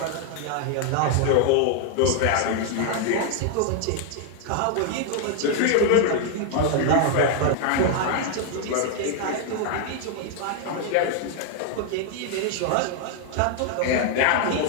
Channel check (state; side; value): different; both; correlation 0.00